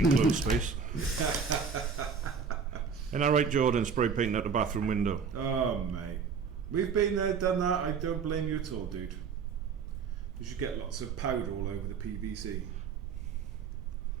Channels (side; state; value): left; quieter; 6.0 dB